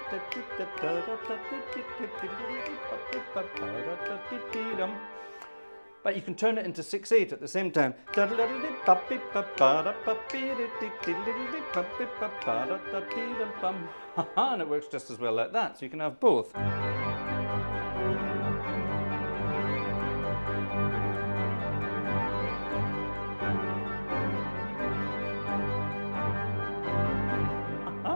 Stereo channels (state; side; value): inverted; both; correlation -1.00